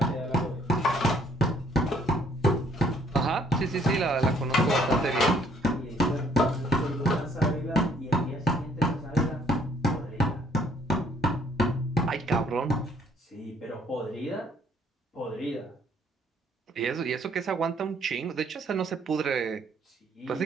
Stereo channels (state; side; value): normal; both; correlation 0.63